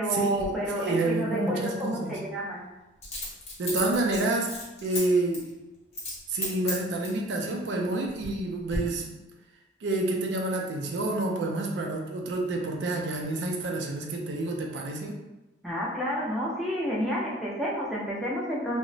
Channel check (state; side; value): normal; both; correlation 0.47